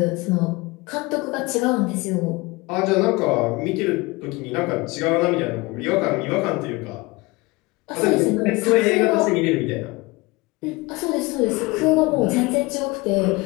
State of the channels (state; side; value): quieter; right; 23.5 dB